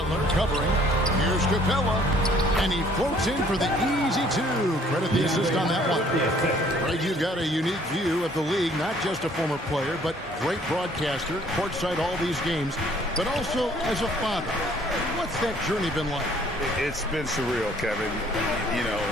covering. Here's Capella. And he floats in for the easy 2. Credit the assist on that one. Greg, you've got a unique view of the league. Not just a former player, but great broadcaster. Courtside all these games. But also as a father. What's that journey been like? It's been surreal, Kevin. You know,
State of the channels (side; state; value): both; normal; correlation 0.59